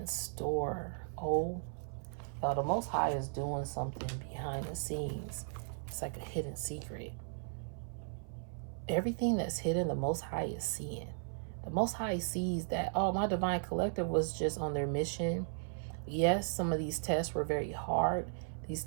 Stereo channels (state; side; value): silent; left; 54 dB below the other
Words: store. The Most High is doing something behind the scenes. It's like a hidden secret. Everything that's hidden, the Most High is seeing. The Most High sees that, my divine collective was just on their mission. Yes, some of these tests were very hard. These